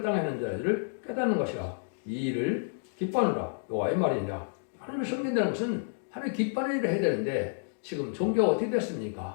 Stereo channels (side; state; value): right; silent; digital silence